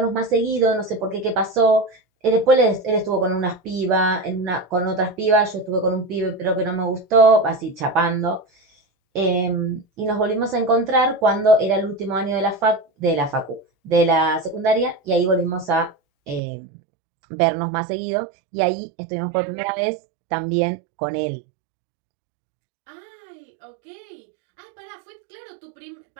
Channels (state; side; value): drops out; left; at 16.4 s